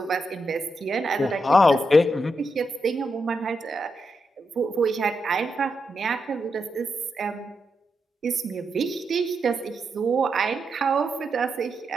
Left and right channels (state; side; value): normal; both; correlation 0.84